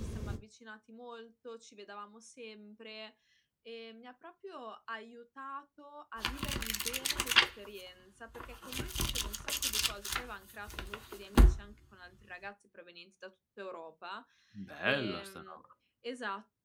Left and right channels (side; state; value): both; identical; correlation 1.00